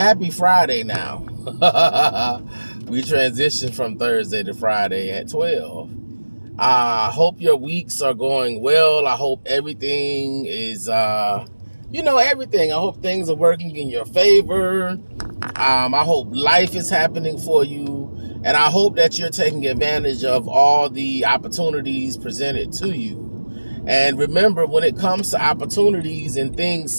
Friday now. We transitioned from Thursday to Friday at 12. I hope your weeks are going well. I hope everything is, everything. I hope things are working in your favor. I hope life is happening for you. And I hope that you're taking advantage of all the opportunities presented to you. And remember, when it comes to opportunities and things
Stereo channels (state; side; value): inverted; both; correlation -1.00